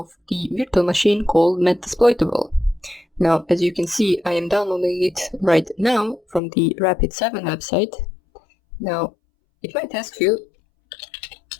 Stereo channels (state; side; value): drops out; right; at 6.4 s